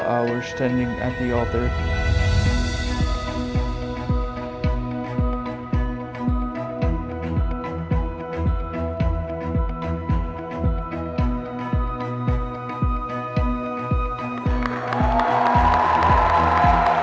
hours standing at the altar.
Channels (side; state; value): both; identical; correlation 1.00